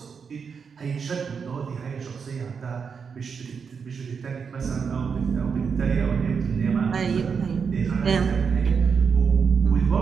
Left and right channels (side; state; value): left; quieter; 6.1 dB